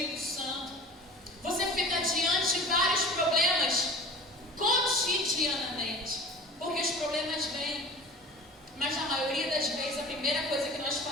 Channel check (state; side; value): normal; both; correlation 0.40